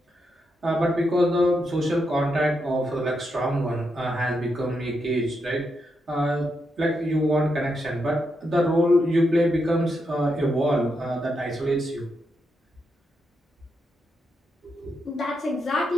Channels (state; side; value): normal; both; correlation 0.83